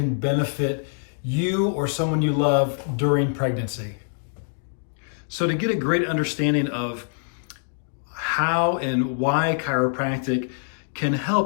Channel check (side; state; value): right; silent; digital silence